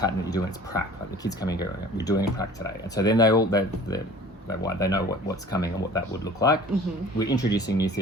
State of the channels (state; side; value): normal; both; correlation 0.46